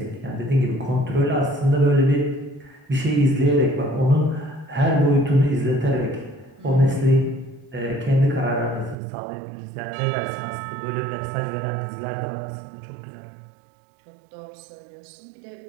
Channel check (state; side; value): drops out; left; at 9.0 s